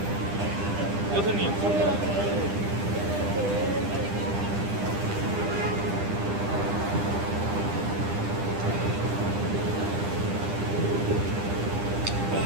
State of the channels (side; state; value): left; late; 10 ms